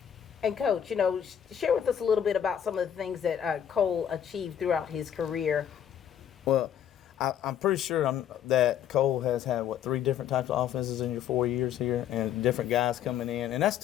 And Coach, you know, share with us a little bit about some of the things that Cole achieved throughout his career. Well, I'm pretty sure that Cole has had, 3 different types of offenses in your 4 years here, and different guys coming in, and that's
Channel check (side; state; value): right; quieter; 9.5 dB